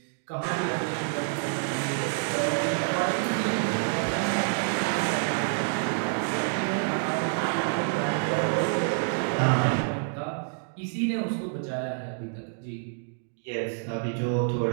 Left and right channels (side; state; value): left; silent; digital silence